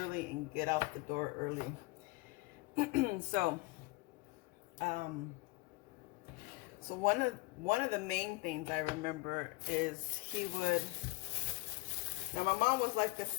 and get out the door early. So one of the main things I remember is he would. Now my mom was like a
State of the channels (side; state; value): right; quieter; 23.4 dB